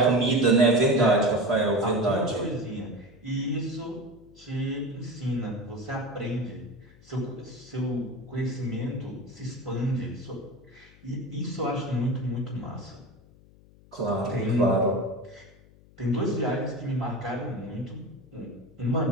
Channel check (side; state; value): left; noise; hum, 25 dB below the sound